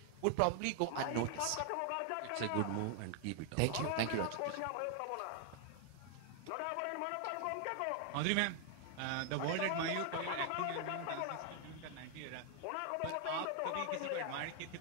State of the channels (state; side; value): different; both; correlation 0.00